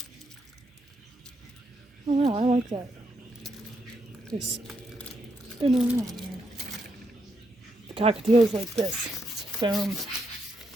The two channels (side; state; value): both; normal; correlation 0.79